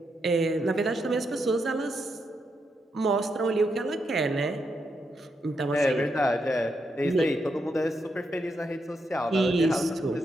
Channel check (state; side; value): normal; both; correlation 0.82